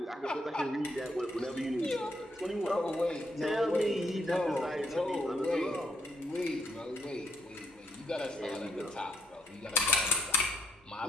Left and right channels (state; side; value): normal; both; correlation 0.72